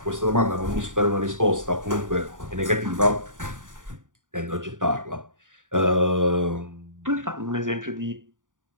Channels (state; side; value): late; left; 0.88 ms